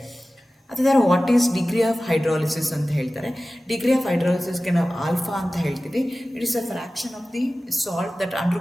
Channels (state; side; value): normal; both; correlation 0.96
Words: ಅದೇ ಥರ what is degree of hydrolysis ಅಂತ ಹೇಳ್ತಾರೆ. ಡಿಗ್ರಿ ಆಫ್ ಹೈಡ್ರಾಲಿಸಿಸ್ಗೆ ನಾವು ಆಲ್ಫಾ ಅಂತ ಹೇಳ್ತೀವಿ. It is a fraction of the salt that